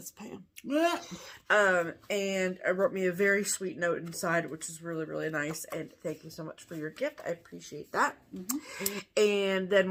Pam. And I wrote me a very sweet note inside, which is really, really nice. And thank you so much for your gift. I appreciate that. And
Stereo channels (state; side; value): identical; both; correlation 1.00